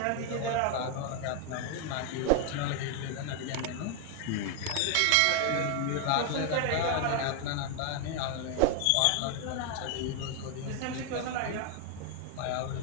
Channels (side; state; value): both; different; correlation 0.00